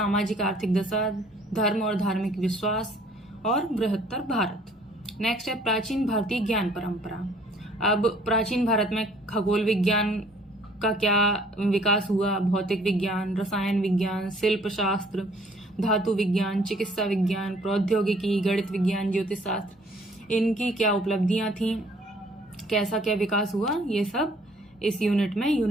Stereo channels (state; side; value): normal; both; correlation 0.58